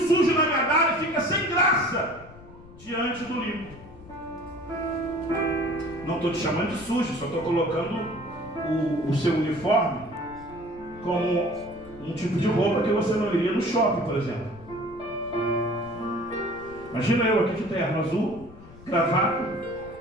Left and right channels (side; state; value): left; noise; rumble, 19 dB below the sound